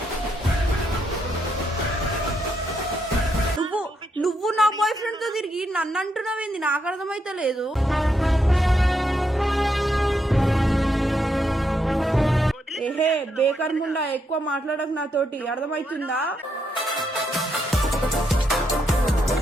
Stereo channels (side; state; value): both; normal; correlation 0.79